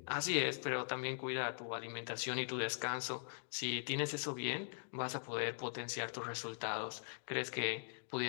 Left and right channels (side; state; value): right; silent; digital silence